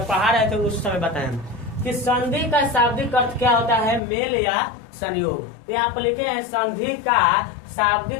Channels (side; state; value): right; drops out; at 4.0 s